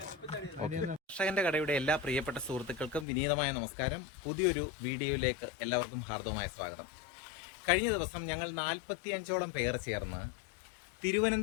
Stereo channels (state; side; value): drops out; right; at 3.1 s